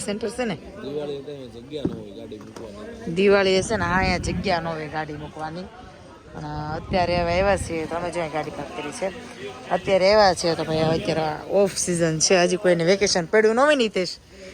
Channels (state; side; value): identical; both; correlation 1.00